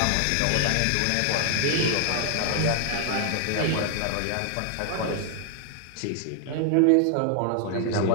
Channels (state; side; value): different; both; correlation 0.00